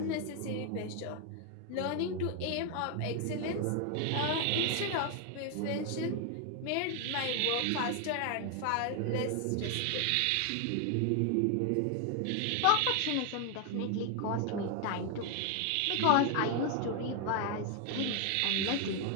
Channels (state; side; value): different; both; correlation 0.00